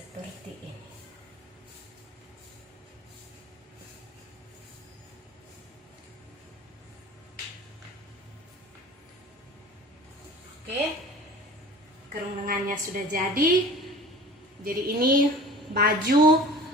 ini. Oke, kerung lengannya sudah jadi. Jadi ini baju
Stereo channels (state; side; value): normal; both; correlation 0.41